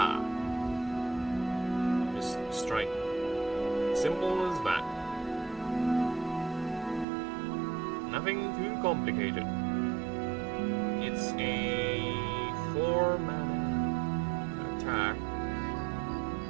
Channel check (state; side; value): drops out; left; at 7.1 s